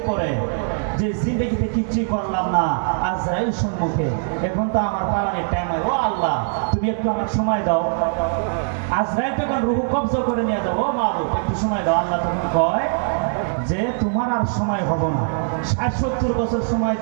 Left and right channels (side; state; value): left; silent; digital silence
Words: যে জিন্দেগিতে কিচ্ছু করলাম না আজরাইল সম্মুখে, এখন তো আমার পালানির টাইম। ও আল্লাহ তুমি একটু আমার সময় দাও। আজরাইল তখন রূহ কবজা করে নিয়ে যাবো, মাবুদ একটু সময় দাও। আল্লাহ তখন কয় যে তোমার আর সময় হবো না, 60-70 বছর সময়